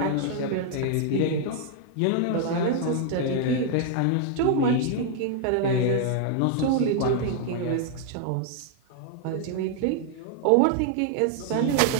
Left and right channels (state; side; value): different; both; correlation 0.00